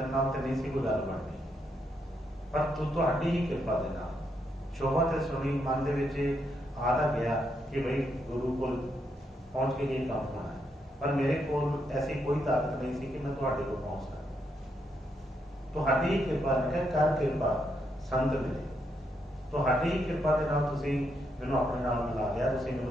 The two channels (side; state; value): both; normal; correlation 0.79